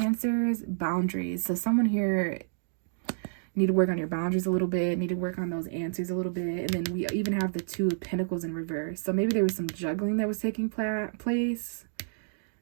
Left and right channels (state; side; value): silent; left; digital silence